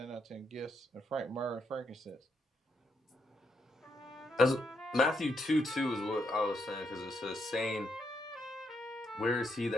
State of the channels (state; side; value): normal; both; correlation 0.79